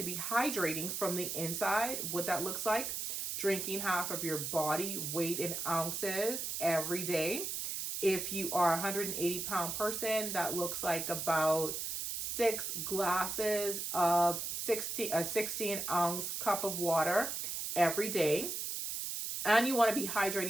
be hydrating from the inside. What that looks like, drinking half of your body weight in ounces every day. If you are a 180-pound person, that looks like about 6 glasses of a 16-ounce cup of water every day. And you want to be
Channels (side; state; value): right; noise; hiss, 3 dB below the sound